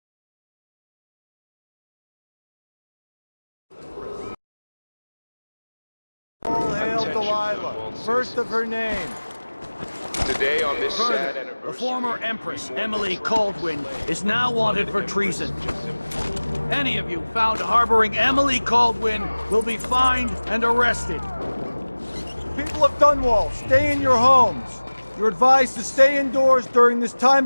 All hail Delilah, first of her name. Today on this Further, sad the anniversary. former Empress, Emily Caldwin, is now wanted for treason. Any of you found harboring Emily Caldwin will be fined and arrested. People of Dunwall, stay in your homes. You're advised to stay indoors during this time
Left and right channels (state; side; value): inverted; both; correlation -1.00